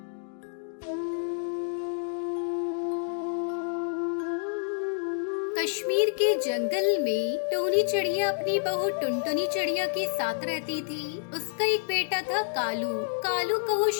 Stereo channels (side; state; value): right; silent; digital silence